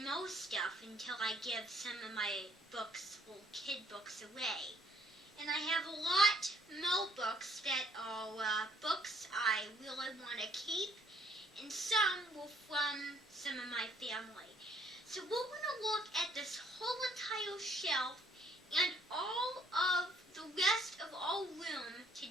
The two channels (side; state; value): both; normal; correlation 0.63